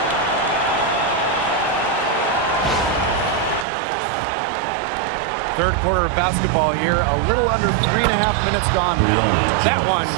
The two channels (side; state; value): left; drops out; at 3.7 s